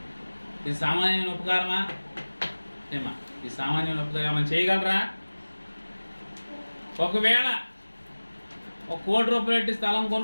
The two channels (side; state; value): both; inverted; correlation -1.00